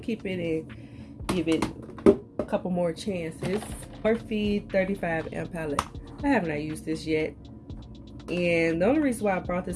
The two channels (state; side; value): identical; both; correlation 1.00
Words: it and give it a couple more chances. Morphe 35M palette. I have not used this yet, and the only reason why I brought this